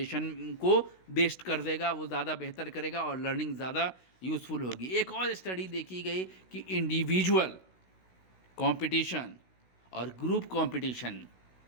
को बेस्ट कर देगा, वो ज़्यादा बेहतर करेगा और लर्निंग ज़्यादा यूज़फुल होगी। एक और स्टडी देखी गई कि इंडिविजुअल कंपटीशन और ग्रुप कंपटीशन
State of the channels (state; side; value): late; right; 16 ms